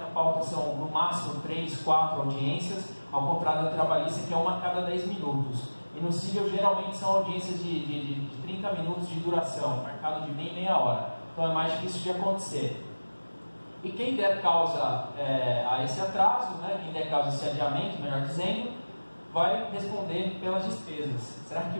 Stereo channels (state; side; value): inverted; both; correlation -1.00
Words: a pauta são no máximo 3, 4 audiências, ao contrário da trabalhista, que é uma a cada 10 minutos. E no cível, geralmente são audiências de 30 minutos de duração, marcado de meia hora. Então é mais difícil de acontecer. E quem der causa a esse atraso, né, quem der causa a esse adiamento, melhor dizendo, vai responder pelas despesas. Será que